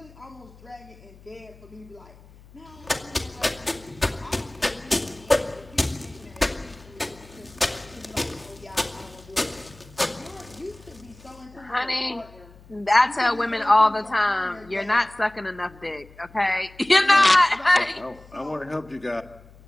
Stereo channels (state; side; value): noise; left; hum, 23 dB below the sound